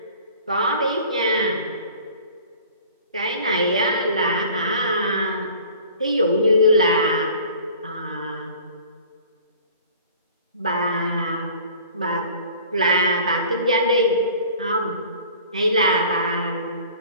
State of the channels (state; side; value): inverted; both; correlation -0.47